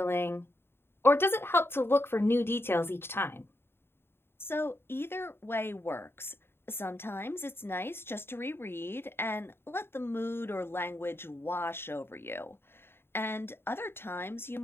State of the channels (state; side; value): late; right; 0.11 ms